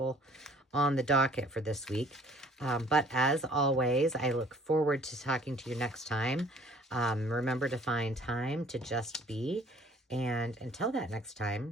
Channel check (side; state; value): both; normal; correlation 0.55